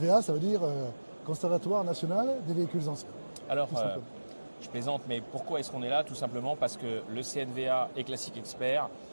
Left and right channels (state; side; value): inverted; both; correlation -1.00